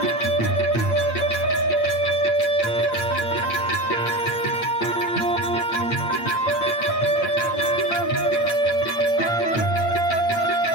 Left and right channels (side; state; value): right; late; 8.8 ms